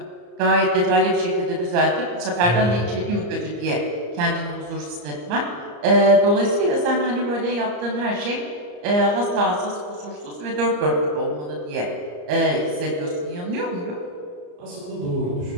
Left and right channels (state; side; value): late; left; 34 ms